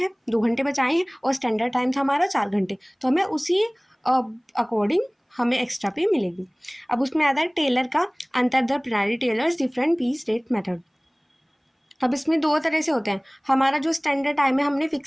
2 घंटे बचाए हैं और स्टैंडर्ड टाइम था हमारा 4 घंटे, तो हमें उसी अकॉर्डिंग हमें एक्स्ट्रा पे मिलेगी। अब उसमें आता है टेलर का अंतर द प्रणाली Taylor's different piece rate method. अब इसमें दो तरह से होते हैं, हमारा जो स्टैंडर्ड टाइम है हमने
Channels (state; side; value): identical; both; correlation 1.00